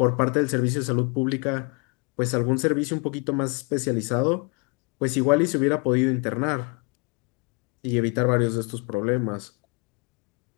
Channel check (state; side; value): quieter; right; 32.2 dB